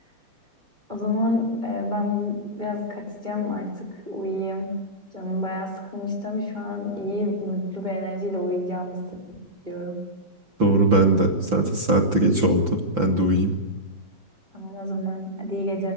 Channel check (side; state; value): left; late; 6.0 ms